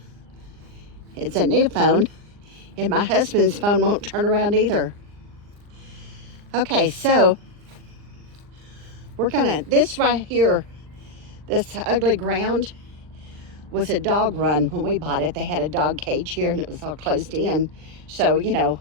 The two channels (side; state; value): left; late; 39 ms